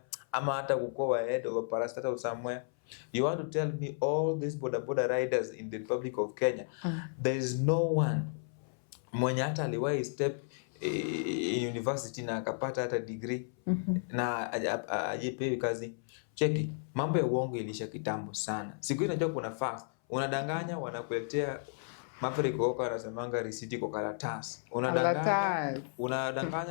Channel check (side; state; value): right; silent; 55 dB below the other